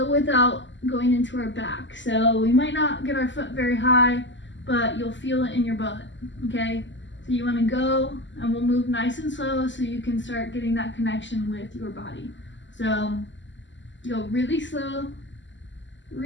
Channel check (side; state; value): right; late; 0.54 ms